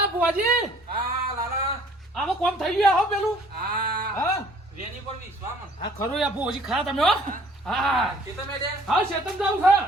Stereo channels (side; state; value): both; normal; correlation 0.56